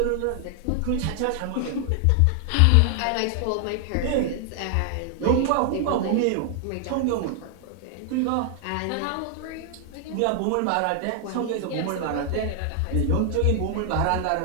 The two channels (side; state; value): both; different; correlation 0.00